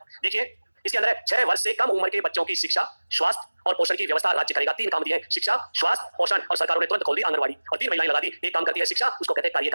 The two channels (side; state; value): both; inverted; correlation -1.00